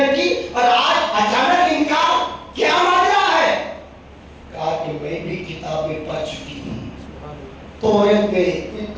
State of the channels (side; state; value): both; identical; correlation 1.00